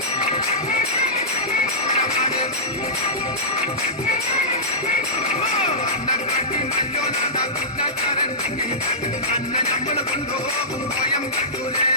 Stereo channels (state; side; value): normal; both; correlation -0.17